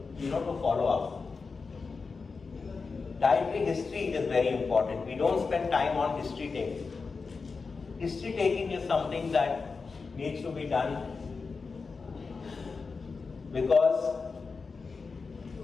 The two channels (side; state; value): right; quieter; 4.6 dB